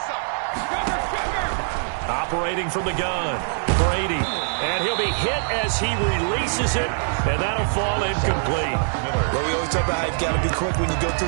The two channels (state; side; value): silent; left; digital silence